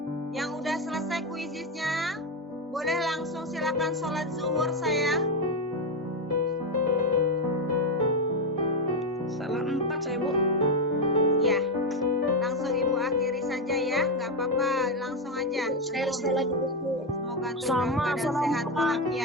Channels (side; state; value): both; normal; correlation 0.08